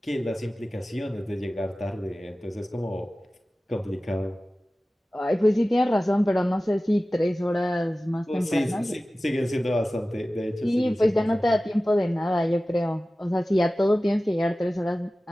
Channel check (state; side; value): normal; both; correlation 0.96